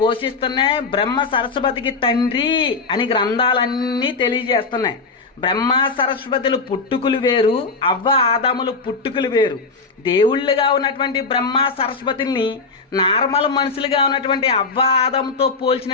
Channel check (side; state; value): right; quieter; 4.3 dB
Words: బ్రహ్మ సరస్వతికి తండ్రి అని గ్రంథాలన్నీ తెలియజేస్తున్నాయి. బ్రహ్మ సరస్వతులు పుట్టుకులు వేరు, అవ్వ ఆదాములు పుట్టుకులు వేరు. దేవుళ్ళుగా ఉన్నటువంటి బ్రహ్మ సరస్వతుల్ని నార్మల్ మనుషులుగా ఉన్నటువంటి అవ్వ ఆదాముతో